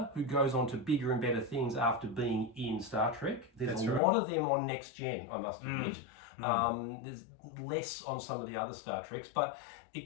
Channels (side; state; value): right; drops out; at 4.0 s